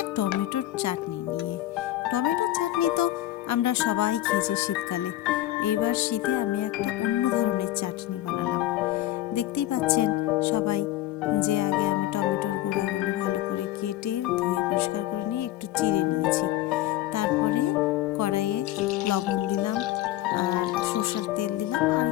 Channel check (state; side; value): quieter; right; 14.6 dB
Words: টমেটোর চাটনি নিয়ে। টমেটোর চাটনি তো আমরা সবাই খেয়েছি শীতকালে। এইবার শীতে আমি একটা অন্য ধরনের চাটনি বানালাম। দেখতেই পাচ্ছেন সবাই যে আগে আমি টমেটোর গুঁড়াগুলো ভালো করে কেটে ধুয়ে পরিষ্কার করে নিয়ে একটু চিড়ে নিয়েছি। তারপরে কড়াইয়ে লবণ দিলাম আর সরষের তেল দিলাম আর